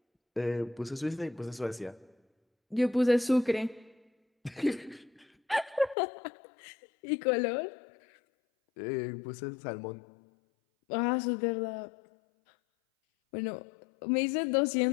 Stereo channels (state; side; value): drops out; right; at 6.0 s